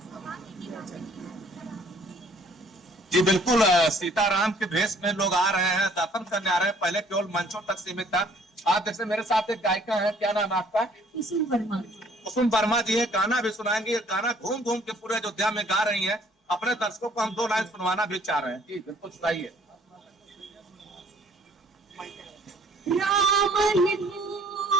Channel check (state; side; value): normal; both; correlation 0.59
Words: जी बिल्कुल, सीताराम के भेष में लोग आ रहे हैं, दर्शन करने आ रहे हैं। पहले केवल मंचों तक सीमित था। आप जैसे मेरे साथ एक गायिका है, क्या नाम है आपका? कुसुम वर्मा। कुसुम वर्मा जी है, गाना भी सुनाएंगे। गाना घूम घूम के पूरे अयोध्या में गा रही हैं। अपने दर्शकों को हम 2 लाइन सुनवाना भी चाह रहे हैं। जी बिल्कुल सुनाइए। राम ही